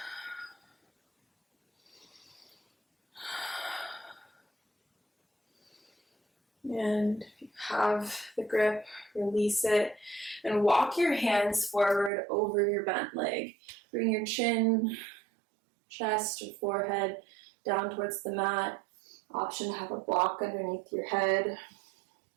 And if you have the grip, release it and walk your hands forward over your bent leg. Bring your chin, chest, or forehead down towards the mat. Option to have a block underneath your head.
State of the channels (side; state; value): left; drops out; at 12.1 s